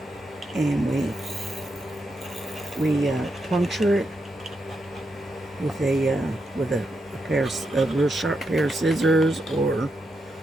and we puncture it with a real sharp pair of scissors or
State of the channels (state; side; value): normal; both; correlation 0.84